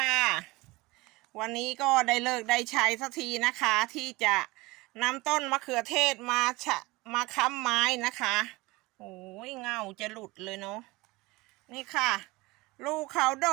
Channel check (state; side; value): quieter; left; 22.0 dB